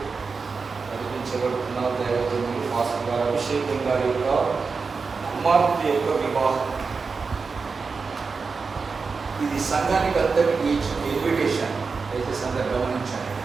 నడిపించబడుతున్న దైవజనులు పాస్టర్ గారు అభిషేకం గారి యొక్క కుమార్తె యొక్క వివాహం. ఇది సంఘానికి అందరికీ ఇచ్చిన ఇన్విటేషన్. అయితే సంఘం గమనించండి,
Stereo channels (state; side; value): quieter; left; 4.8 dB